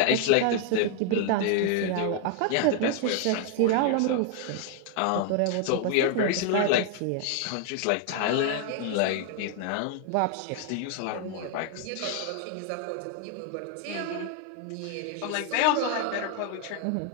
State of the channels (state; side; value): different; both; correlation 0.00